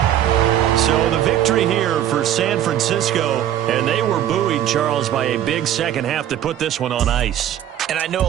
So the victory here for San Francisco, and they were buoyed, Charles, by a big second half to put this one on ice. And I know a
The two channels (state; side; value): quieter; left; 11.2 dB